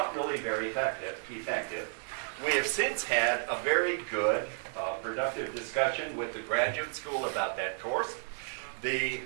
really very effective. We have since had a very good, productive discussion with the graduate school about that course. The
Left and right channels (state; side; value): silent; left; 56 dB below the other